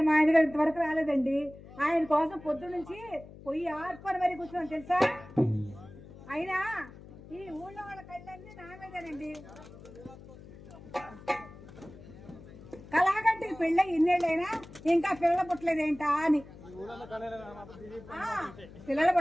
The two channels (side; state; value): left; noise; hum, 18 dB below the sound